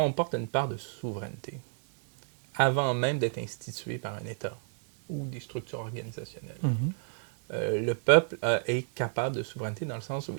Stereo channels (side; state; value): left; silent; digital silence